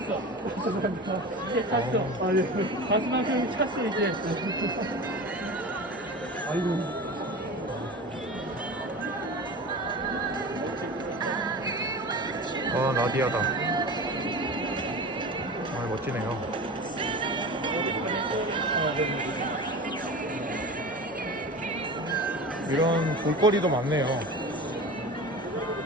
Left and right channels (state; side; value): normal; both; correlation 0.32